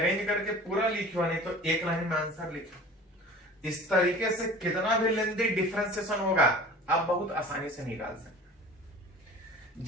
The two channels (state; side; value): normal; both; correlation 0.41